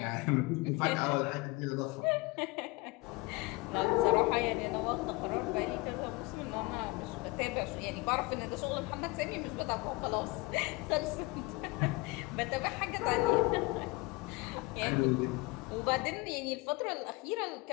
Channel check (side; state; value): right; quieter; 24.4 dB